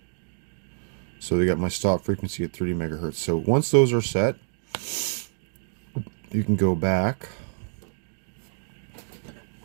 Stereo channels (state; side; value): silent; left; digital silence